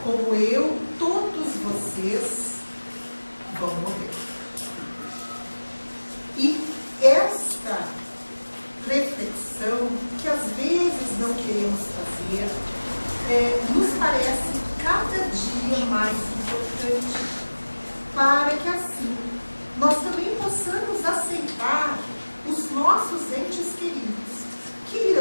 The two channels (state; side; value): inverted; both; correlation -1.00